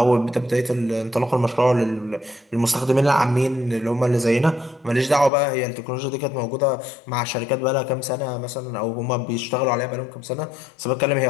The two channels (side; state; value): right; drops out; at 5.3 s